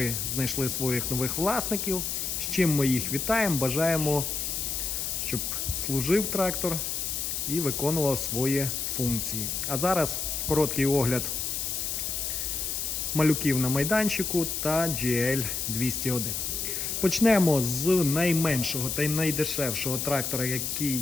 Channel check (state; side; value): noise; left; hiss, 2 dB below the sound